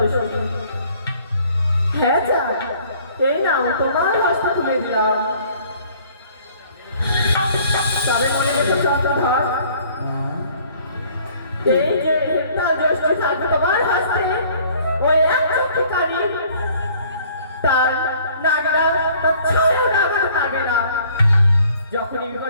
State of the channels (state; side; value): inverted; both; correlation -0.56